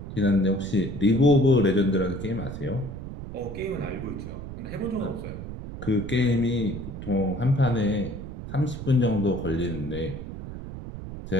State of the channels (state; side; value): noise; right; rumble, 9 dB below the sound